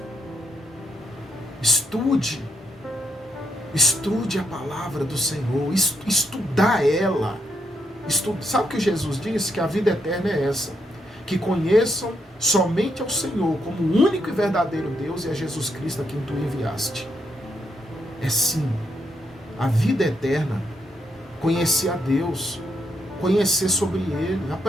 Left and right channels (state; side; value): normal; both; correlation 0.78